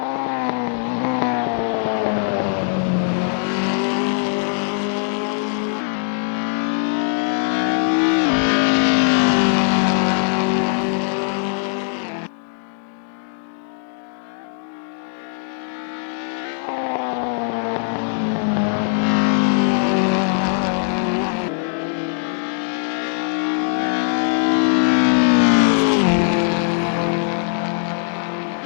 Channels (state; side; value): silent; right; 65 dB below the other